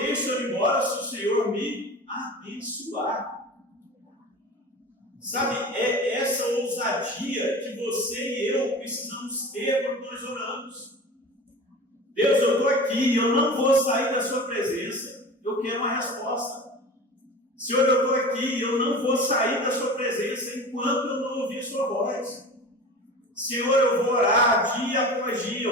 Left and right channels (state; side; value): normal; both; correlation 0.35